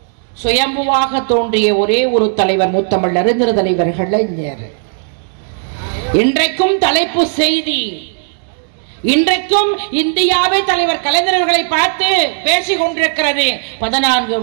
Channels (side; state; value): left; silent; digital silence